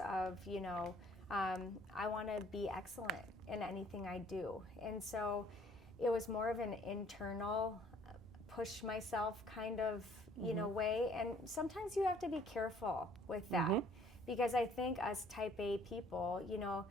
of, I want to be excellent in anything I do. And so it was more of an internal push myself kind of, way. And sometimes you have to be careful with that because I think us type A people,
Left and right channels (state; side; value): normal; both; correlation 0.58